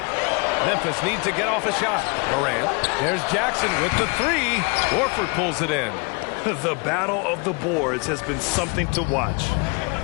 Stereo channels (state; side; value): quieter; right; 31.2 dB